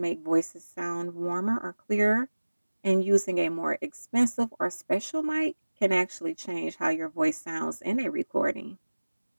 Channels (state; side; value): inverted; both; correlation -1.00